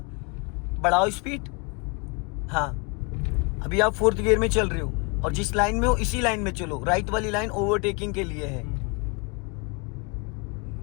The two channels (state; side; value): quieter; right; 31.2 dB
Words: बढ़ाओ स्पीड। हाँ, अभी आप 4th गियर में चल रहे हो और जिस लाइन में हो इसी लाइन में चलो, राइट वाली लाइन ओवरटेकिंग के लिए है।